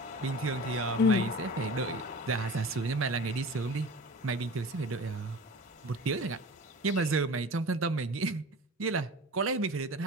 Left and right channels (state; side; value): normal; both; correlation 0.37